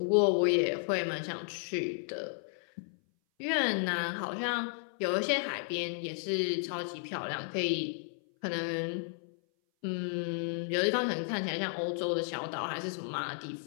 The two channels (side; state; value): right; silent; 56 dB below the other